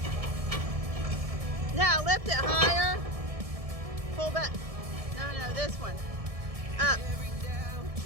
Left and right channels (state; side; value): late; left; 1.7 ms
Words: Now lift it higher. Pull back. No, this one. Up.